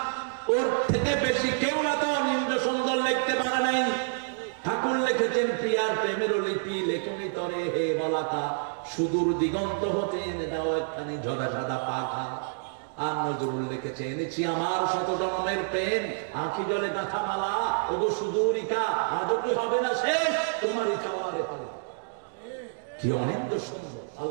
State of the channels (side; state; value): left; silent; digital silence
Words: ওর থেকে বেশি কেউ না তো নিম্ন সুন্দর লিখতে পারে নাই ঠাকুর লিখেছেন প্রিয়ার প্রেমের লিপি লেখনি তরে হে বলাকা সুদূর দিগন্ত হতে এনে দাও একখানি ঝরা সাদা পাখা আর নজরুল লিখেছে এনেছি আমার শত জন্মের প্রেম আঁখি জলে গাঁথা মালা ওগো সুদূরিকা আজও কি হবে না শেষ তোমারই চাওয়ারে পালা কি অনেক সুন্দর